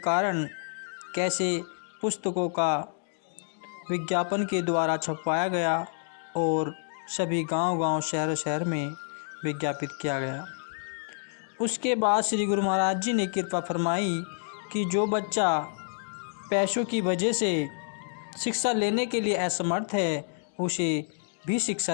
कैसे पुस्तकों का विज्ञापन के द्वारा छपवाया गया और सभी गांव-गांव, शहर-शहर में विज्ञापित किया गया। उसके बाद श्री गुरु महाराज जी ने कृपा फरमाई कि जो बच्चा पैसों की वजह से शिक्षा लेने के लिए असमर्थ है, उसे भी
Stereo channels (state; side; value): silent; right; digital silence